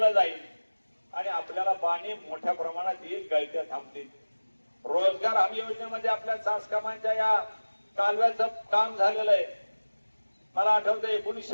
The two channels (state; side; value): inverted; both; correlation -1.00